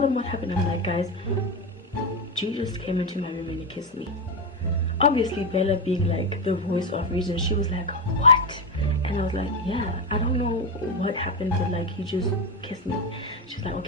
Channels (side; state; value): both; normal; correlation 0.12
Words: them what happened. I'm like, guys, G just came into my room and he kissed me. Obviously Bella, being like the voice of reason, she was like, what? And I was like, yeah, I don't know what happened, but like, he just kissed me. She's like,